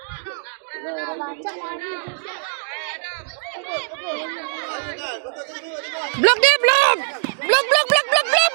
Blok dia, blok. Blok.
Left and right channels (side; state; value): left; silent; digital silence